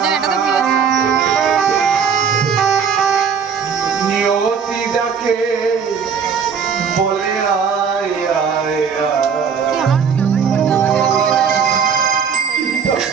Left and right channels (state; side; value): quieter; left; 6.6 dB